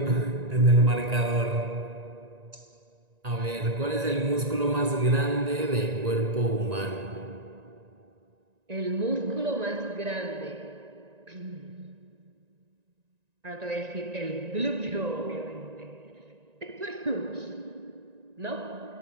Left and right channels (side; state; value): left; late; 1.9 ms